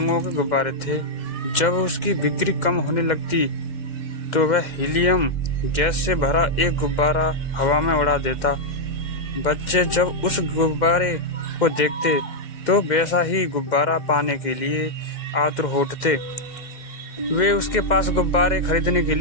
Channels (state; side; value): late; right; 2.1 ms